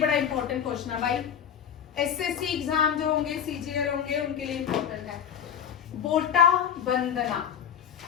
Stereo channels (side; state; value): right; quieter; 8.5 dB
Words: इंपॉर्टेंट क्वेश्चन है भाई। एसएससी एग्जाम जो होंगे, सीजीएल होंगे, उनके लिए इंपॉर्टेंट है। बोटा बंदना,